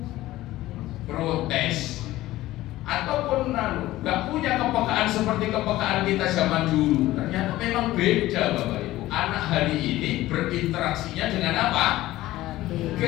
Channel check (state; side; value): quieter; right; 16.3 dB